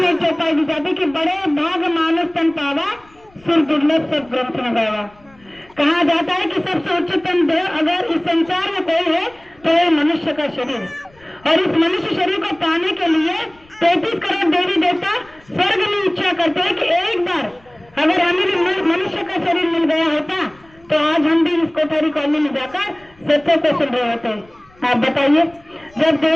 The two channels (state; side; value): noise; left; rumble, 29 dB below the sound